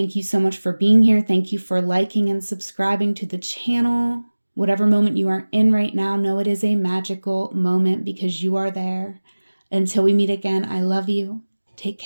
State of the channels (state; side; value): inverted; both; correlation -1.00